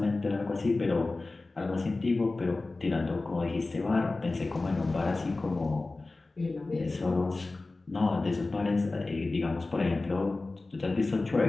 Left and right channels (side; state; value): right; quieter; 3.3 dB